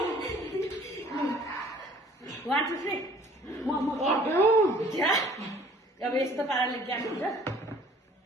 अब यस्तो पाराले ज्ञान हुन्छ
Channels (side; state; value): both; normal; correlation 0.54